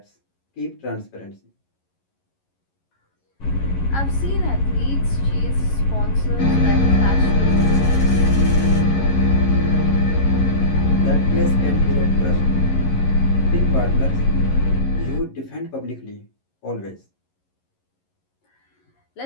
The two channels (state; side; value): late; right; 11 ms